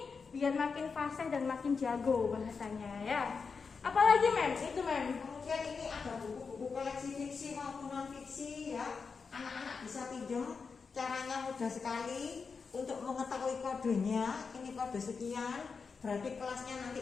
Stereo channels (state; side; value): quieter; right; 5.2 dB